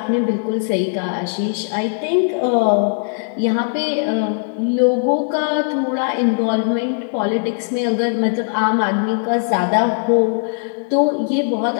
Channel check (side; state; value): right; silent; digital silence